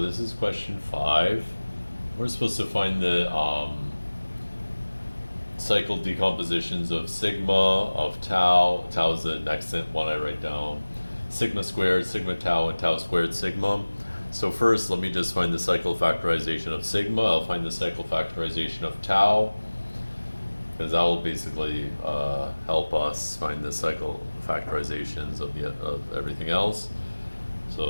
this is question 5. We're supposed to find the cycle decompositions of sigma, of tau. Tau is the next one I write down. Sigma squared, sigma tau, and tau squared sigma. So first, let me just find the cycle factorization of sigma. I'll find the cycle factorization of tau, because that will basically help us find the cycle factorizations of everything else.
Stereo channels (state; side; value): inverted; both; correlation -1.00